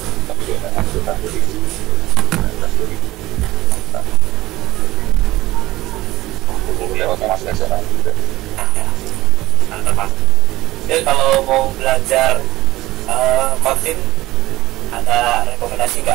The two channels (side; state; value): left; quieter; 17.5 dB